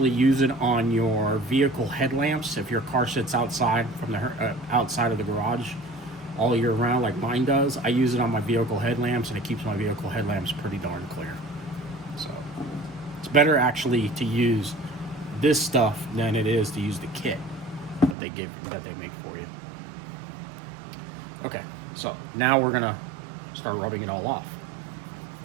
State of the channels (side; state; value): left; drops out; at 18.2 s